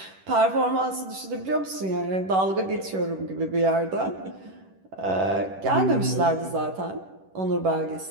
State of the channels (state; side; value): late; left; 11 ms